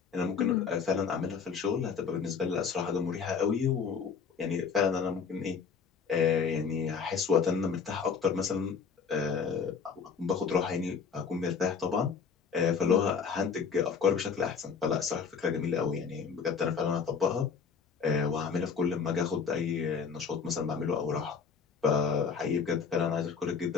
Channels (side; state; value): right; quieter; 6.0 dB